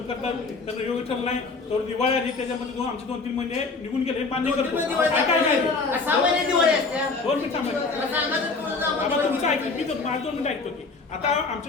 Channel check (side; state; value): right; quieter; 4.1 dB